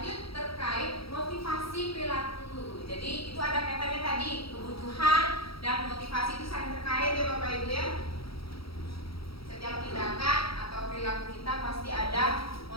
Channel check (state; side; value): late; right; 0.75 ms